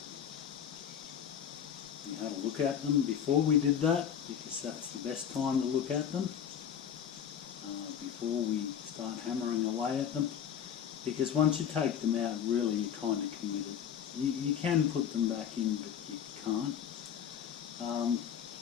we had a look at them before we did that, because that's the best time to look at them before we start hammering away at them, because once you take them out, really you're kind of committed. You can put them back in, but you can't.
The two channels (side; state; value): right; quieter; 8.6 dB